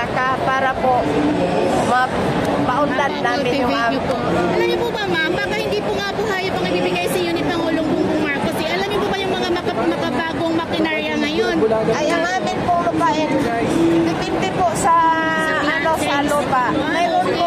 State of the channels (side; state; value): both; identical; correlation 1.00